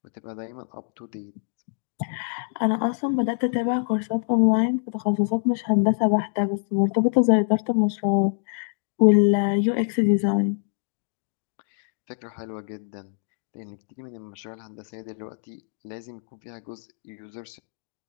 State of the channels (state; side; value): silent; right; digital silence